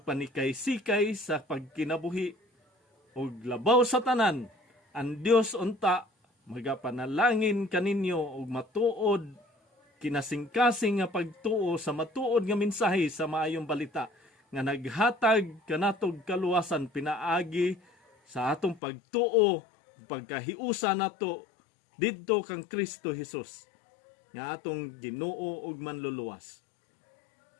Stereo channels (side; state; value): right; drops out; at 18.8 s